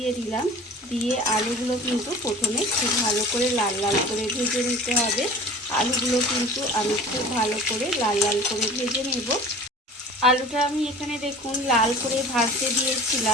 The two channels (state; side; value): normal; both; correlation 0.42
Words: দিলাম। দিয়ে আলুগুলো কিন্তু প্রথমে খুব ভালো করে লাল লাল করে ভেজে নিতে হবে। আলুগুলো কিন্তু আমি খুব ভালো করে লাল লাল করে ভেজে নেব। আলুটা আমি এখানে দেখুন লাল করে ভাজতে